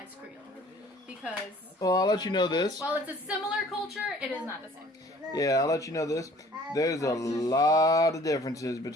Creole. Because, Well, I'll let you know this. while it's a similar culture, it is not the same. Yeah, I'll let you know this. There's a lot of differences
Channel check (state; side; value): normal; both; correlation 0.53